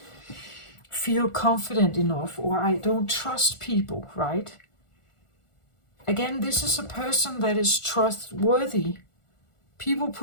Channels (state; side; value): late; right; 1.4 ms